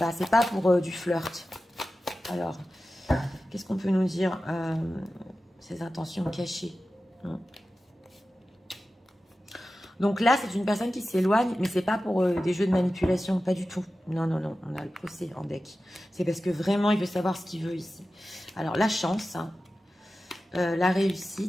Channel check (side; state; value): both; normal; correlation 0.94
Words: c'est pas pour du flirt. Alors, qu'est-ce qu'on peut nous dire? Ses intentions cachées. Donc là, c'est une personne qui s'éloigne, mais c'est pas pour des jeux de manipulation, pas du tout. Non, non, non, on a le procès en deck. C'est parce que vraiment, il veut savoir ce qu'il veut ici. Alors, la chance, hein, la